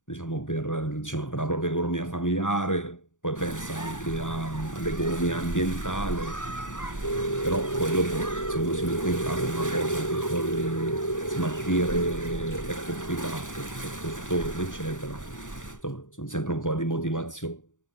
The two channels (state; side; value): late; right; 0.86 ms